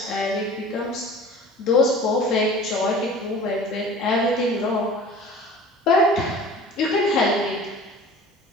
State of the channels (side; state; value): both; normal; correlation 0.42